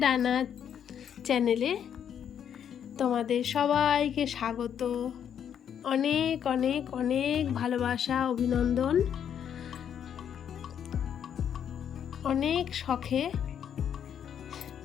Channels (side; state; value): right; quieter; 8.8 dB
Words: ডানা চ্যানেলে তোমাদের সবাইকে স্বাগত। অনেক অনেক অনেক ভালোবাসা, অভিনন্দন। অনেক শখে